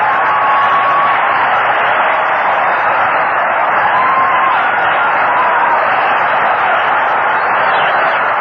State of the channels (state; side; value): identical; both; correlation 1.00